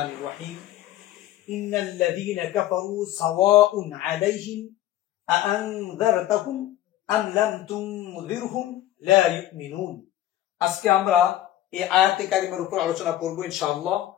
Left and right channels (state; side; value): quieter; right; 13.5 dB